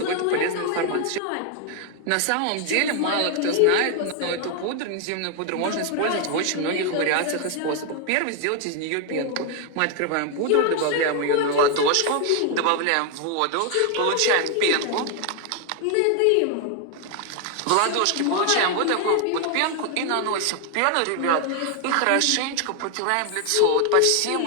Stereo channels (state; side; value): different; both; correlation 0.00